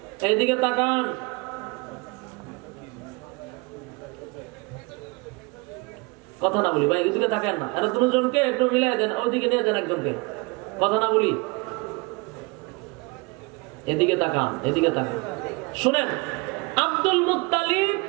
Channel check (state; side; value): quieter; left; 27.4 dB